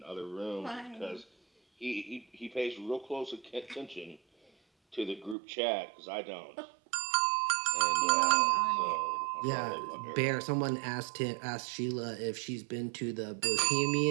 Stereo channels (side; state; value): left; drops out; at 5.4 s